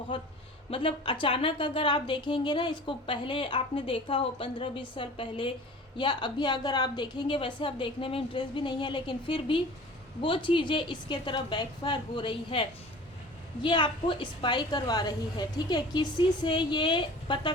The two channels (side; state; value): both; normal; correlation 0.42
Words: मतलब अचानक अगर आप देखेंगे ना इसको, पहले आपने देखा हो 15-20 साल पहले, या अभी अगर आप देखेंगे, वैसे आप देखने में इंटरेस्ट भी नहीं है, लेकिन फिर भी वो चीज़ें इसके तरफ बैकफायर हो रही है। ये आपको स्पाई करवा रही है। ठीक है, किसी से ये पता